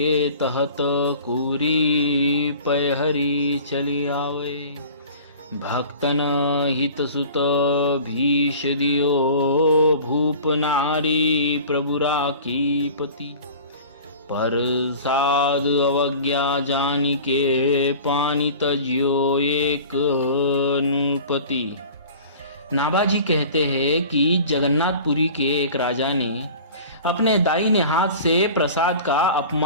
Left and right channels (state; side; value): inverted; both; correlation -0.41